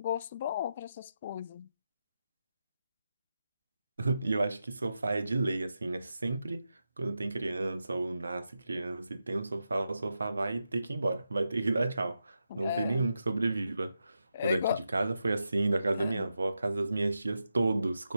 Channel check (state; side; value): inverted; both; correlation -0.87